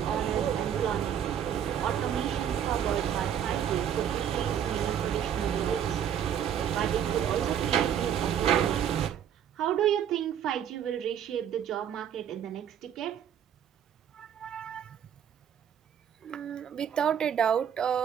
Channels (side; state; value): left; quieter; 9.2 dB